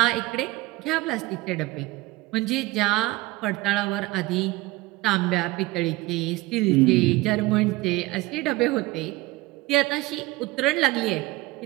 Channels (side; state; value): left; quieter; 20.5 dB